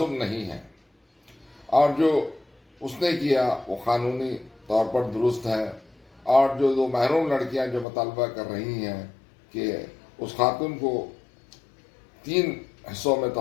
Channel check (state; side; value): drops out; right; at 7.9 s